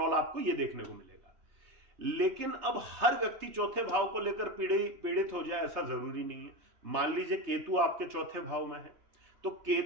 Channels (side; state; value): left; late; 3.3 ms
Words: आपको ये देखने को मिलेगा। लेकिन अब हर व्यक्ति चौथे भाव को लेकर पीड़ित हो जाए ऐसा जरूरी नहीं है। मान लीजिए केतु आपके चौथे भाव में है, तो